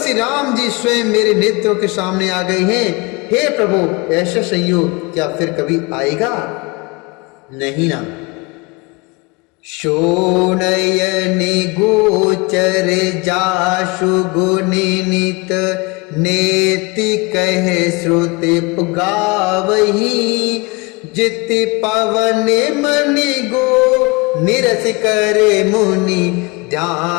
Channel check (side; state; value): right; quieter; 26.6 dB